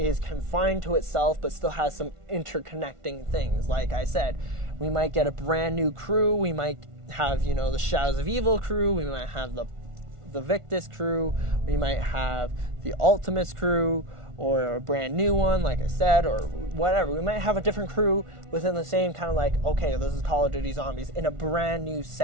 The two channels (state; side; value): late; left; 1.4 ms